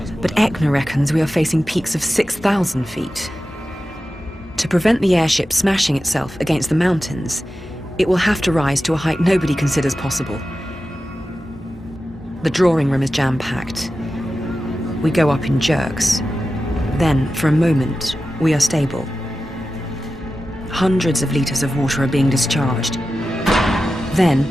but Eckner reckons we are facing peaks of 6,000 feet. To prevent the airship smashing itself against the mountains, it will have to rise to a height nobody considers possible. The drawing room is jam-packed. We go up in jerks. Then, for a moment, we are stable. Hundreds of liters of water are being discharged.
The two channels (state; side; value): normal; both; correlation 0.93